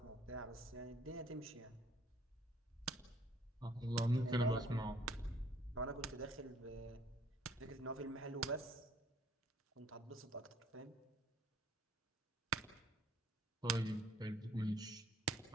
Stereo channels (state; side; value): normal; both; correlation 0.60